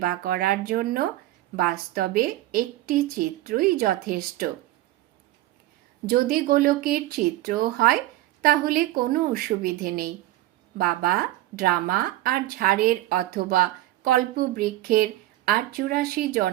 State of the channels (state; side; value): quieter; left; 15.9 dB